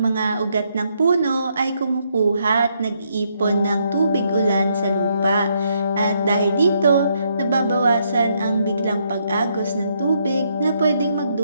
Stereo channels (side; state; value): both; inverted; correlation -0.75